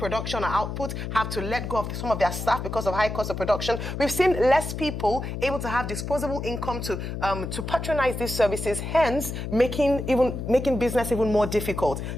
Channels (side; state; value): left; noise; hum, 5 dB below the sound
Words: or output, have to let go of some of their staff because of high cost of production. We've seen less people able to have disposable income to patronize these services, hence making business even more difficult.